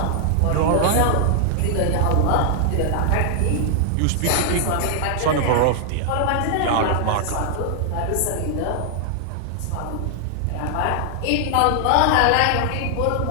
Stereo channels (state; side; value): different; both; correlation 0.00